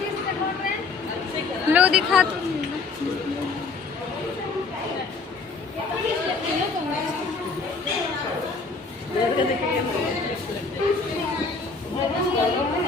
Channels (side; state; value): right; quieter; 4.3 dB